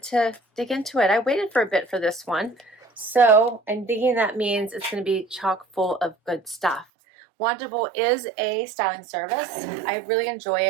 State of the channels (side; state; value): left; drops out; at 6.9 s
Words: to dig into it. I waited for a bit for this one, so I'm thinking that means it's going to be chock full of good stuff. Wantable is a styling service. I really enjoy